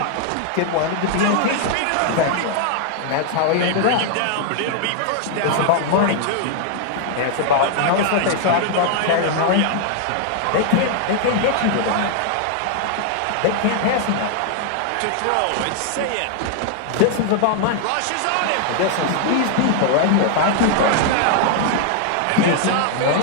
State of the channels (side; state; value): both; different; correlation 0.00